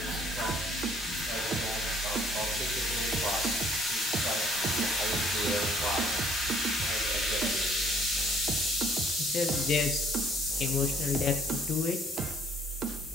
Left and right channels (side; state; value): both; normal; correlation 0.60